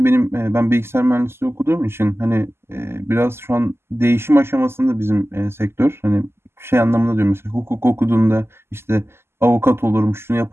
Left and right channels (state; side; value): late; left; 0.12 ms